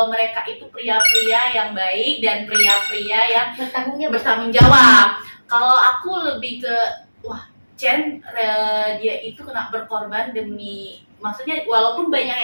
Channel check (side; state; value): both; inverted; correlation -1.00